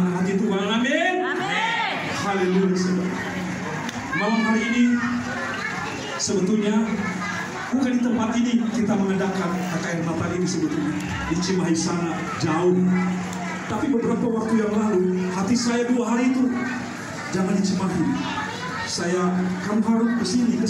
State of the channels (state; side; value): identical; both; correlation 1.00